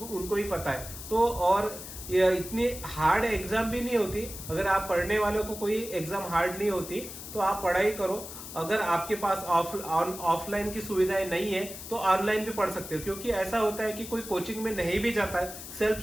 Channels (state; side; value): noise; left; hiss, 11 dB below the sound